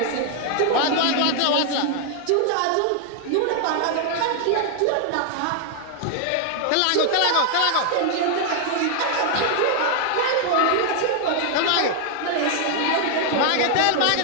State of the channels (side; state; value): both; different; correlation 0.00